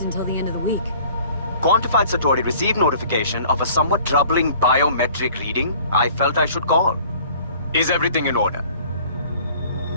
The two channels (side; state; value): both; inverted; correlation -0.50